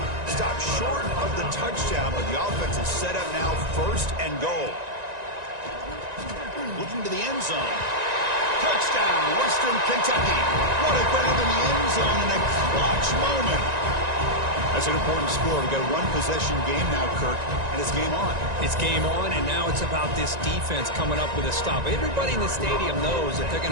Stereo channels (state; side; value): late; left; 1.9 ms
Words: Stopped short of the touchdown, but the offense is set up now 1st and goal. Looking to the end zone. Touchdown, Western Kentucky. What a grab in the end zone in a clutch moment. That's an important score. We've got a 1-possession game now, Kirk, and it's game on. It's game on, and now it's about this defense coming up with a stop. Everybody in the stadium knows that they're